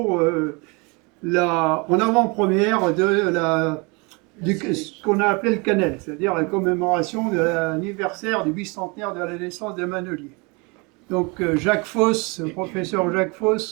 en avant-première de ce qu'on a appelé le Canel, c'est-à-dire la commémoration de l'anniversaire du bicentenaire de la naissance des Maneliers. Donc Jacques Foss, professeur Jacques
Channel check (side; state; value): left; quieter; 29.3 dB